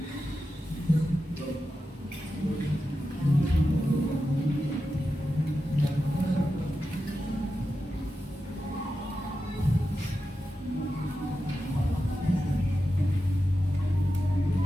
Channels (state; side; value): normal; both; correlation 0.90